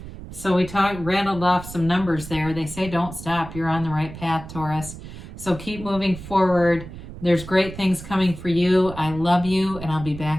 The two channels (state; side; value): noise; right; rumble, 13 dB below the sound